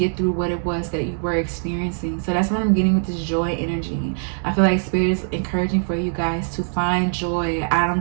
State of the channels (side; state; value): left; silent; digital silence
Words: through what it was that you were experiencing. So that's what I'm getting with this joy energy. I feel like Spirit is encouraging for you guys to find joy. I